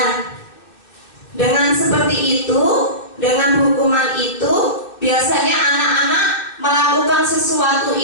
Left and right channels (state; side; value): late; right; 2.6 ms